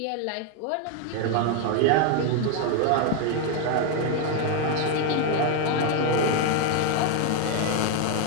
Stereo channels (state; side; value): different; both; correlation 0.01